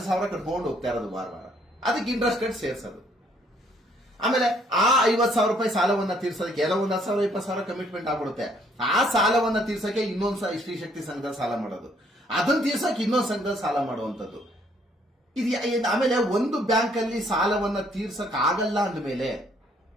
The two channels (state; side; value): normal; both; correlation 0.66